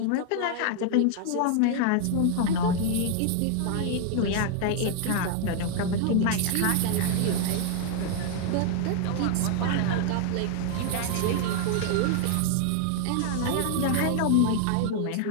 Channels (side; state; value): both; different; correlation 0.00